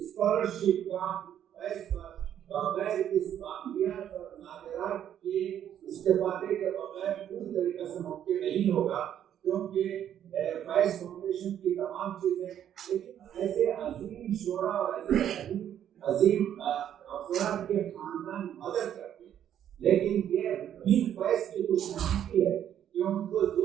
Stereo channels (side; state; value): left; quieter; 10.1 dB